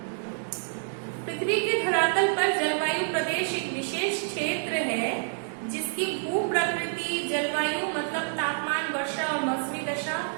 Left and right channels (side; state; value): left; silent; digital silence